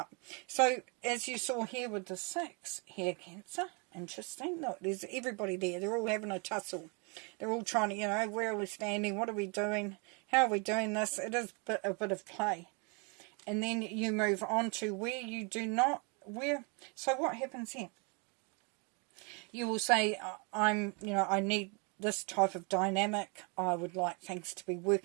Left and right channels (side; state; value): left; quieter; 33.5 dB